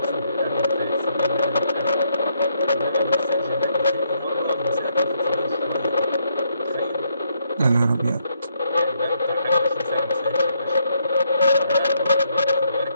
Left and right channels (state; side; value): inverted; both; correlation -0.75